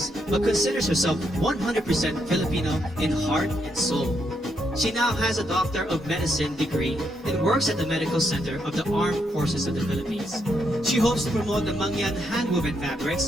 but considers herself 100% Filipino in heart and soul. She now has a Doctor of Medicine degree and works at the Medical Center of the Armed Forces of the Philippines. She hopes to promote the Mangyan handwoven fabrics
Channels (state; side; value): normal; both; correlation 0.78